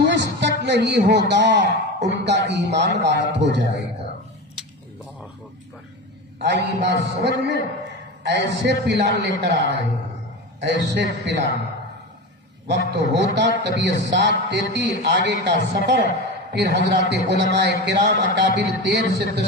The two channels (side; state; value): both; normal; correlation 0.25